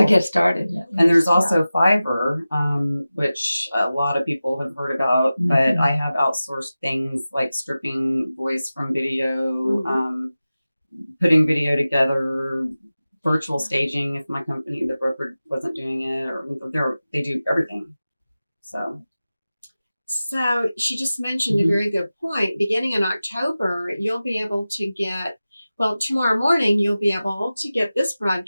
get started. And there's also Fiverr, which a lot of people have heard about, but I have outsourced things like stripping voice from video, putting video together, virtual staging if my company, the broker, wasn't doing it, or they do everything. So she just mentioned a very good point. Beginning in October, you'll be able to get, well, tomorrow morning, you'll be able to get this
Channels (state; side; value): inverted; both; correlation -0.95